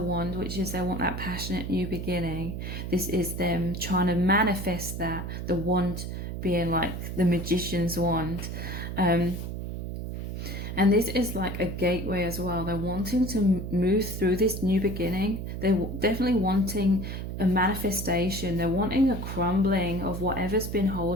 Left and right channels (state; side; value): noise; right; hum, 5 dB below the sound